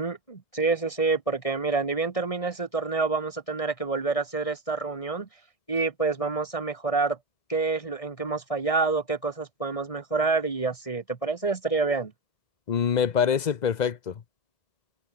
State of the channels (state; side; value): late; right; 2.0 ms